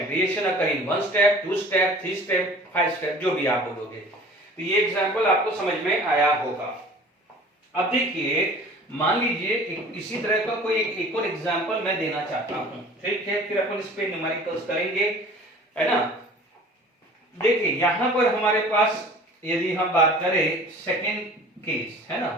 reaction occur in one step, two step, three step, five step, जो भी आप बोलोगे। तो ये example आपको समझ में आया होगा। अब देखिए मान लीजिए इसी तरह का कोई एक और एग्जांपल मैं देना चाहता हूं, ठीक है, फिर अपन इस पे न्यूमेरिकल्स करेंगे, है ना। देखिए यहां पर हमारे पास यदि हम बात करें सेकेंड केस, है ना,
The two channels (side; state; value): both; normal; correlation 0.45